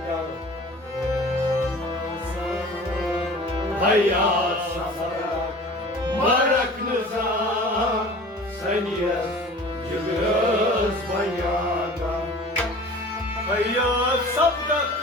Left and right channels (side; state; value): both; normal; correlation 0.42